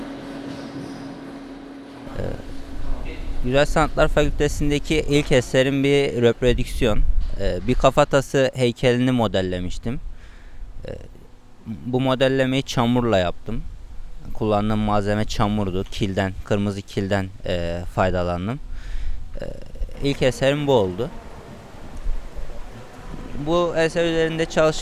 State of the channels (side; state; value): both; identical; correlation 1.00